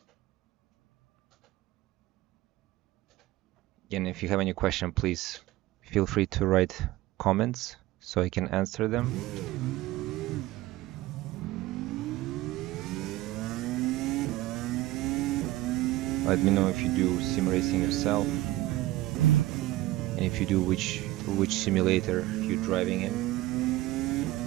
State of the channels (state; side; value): quieter; left; 16.9 dB